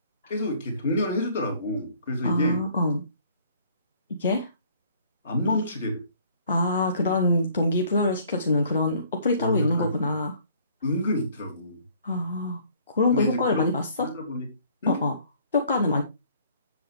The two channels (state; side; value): inverted; both; correlation -0.57